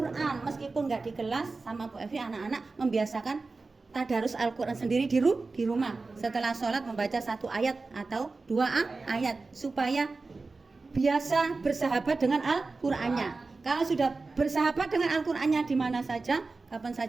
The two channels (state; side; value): quieter; left; 3.8 dB